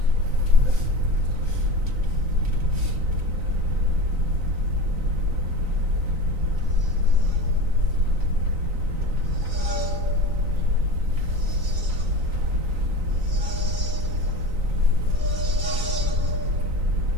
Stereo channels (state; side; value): late; left; 3.9 ms